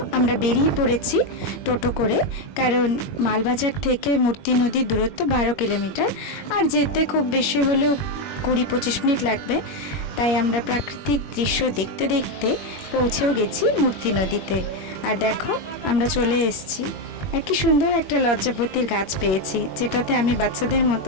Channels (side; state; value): right; late; 21 ms